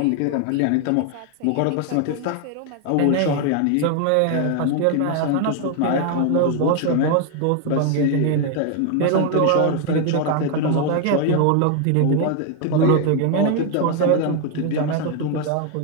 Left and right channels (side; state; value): both; different; correlation 0.01